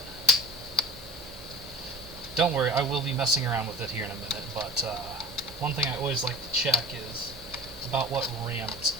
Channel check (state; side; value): normal; both; correlation 0.38